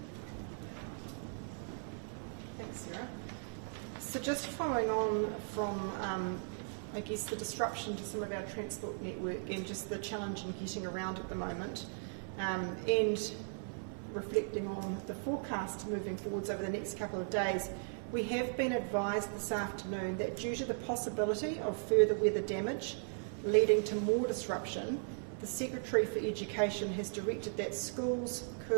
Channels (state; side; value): silent; left; 53 dB below the other